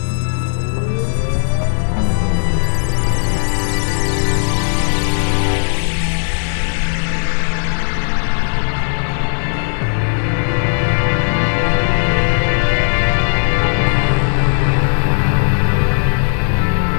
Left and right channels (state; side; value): silent; right; 69 dB below the other